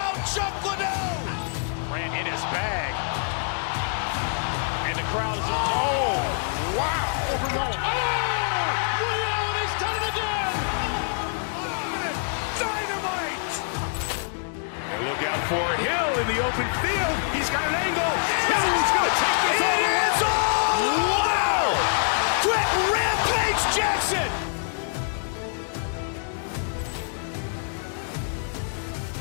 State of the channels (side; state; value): right; silent; digital silence